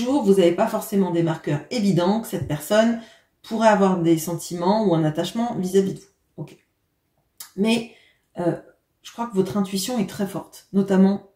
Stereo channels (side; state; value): both; identical; correlation 1.00